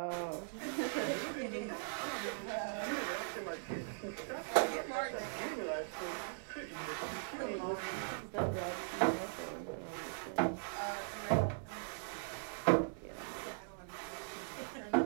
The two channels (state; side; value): silent; left; digital silence